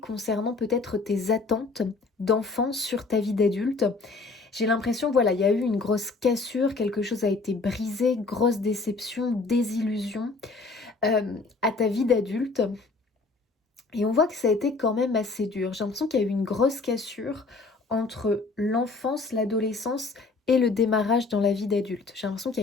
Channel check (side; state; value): right; quieter; 3.9 dB